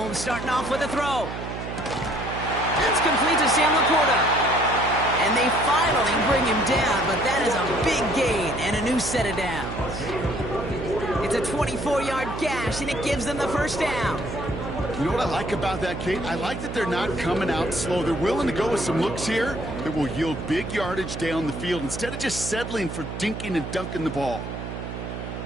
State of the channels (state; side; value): noise; right; hum, 7 dB below the sound